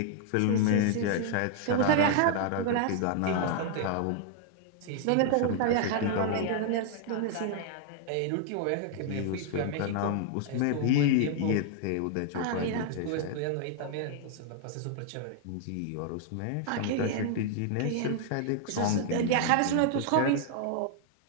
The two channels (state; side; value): different; both; correlation 0.00